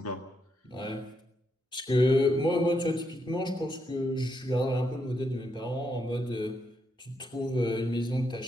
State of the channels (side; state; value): both; normal; correlation 0.80